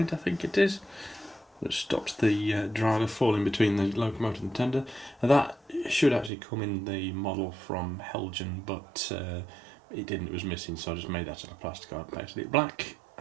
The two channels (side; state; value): left; drops out; at 6.3 s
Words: I think it is, that stops the driver falling between the locomotive and the tender. Now that should actually come in the model from Heljan, but it didn't, it was missing, so I just made that out of plasticard, painted it black,